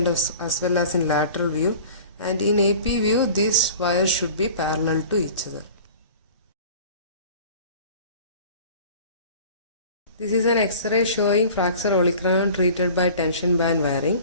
as well as in lateral view. And in AP view, these wires should be parallel to each other. This is an X-ray showing fracture olecranon treated by tension band wiring.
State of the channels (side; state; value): both; inverted; correlation -0.43